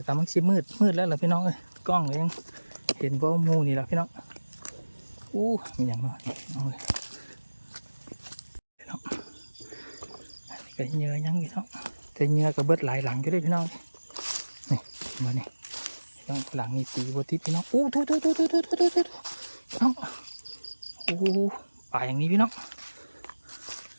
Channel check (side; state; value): both; inverted; correlation -1.00